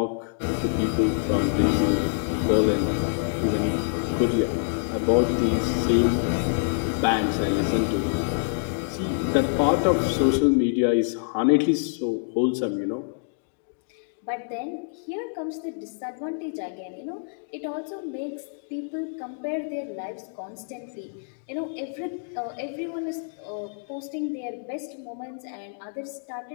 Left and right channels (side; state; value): right; silent; digital silence